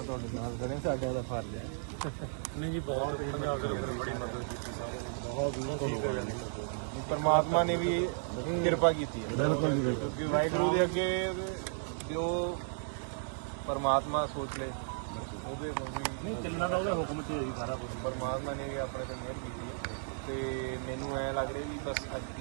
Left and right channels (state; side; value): silent; left; digital silence